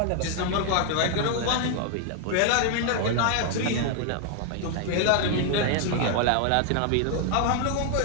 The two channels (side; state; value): both; different; correlation 0.00